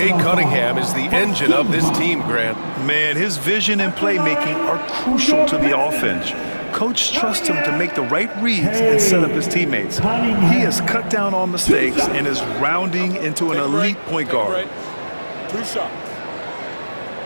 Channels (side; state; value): both; inverted; correlation -1.00